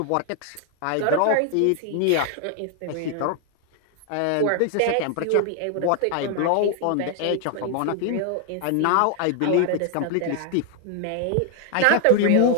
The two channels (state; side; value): different; both; correlation 0.00